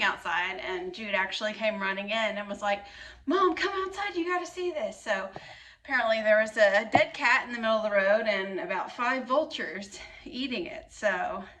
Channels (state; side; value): identical; both; correlation 1.00